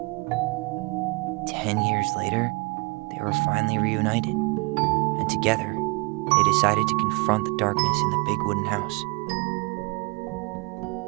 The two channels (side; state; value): left; quieter; 27.3 dB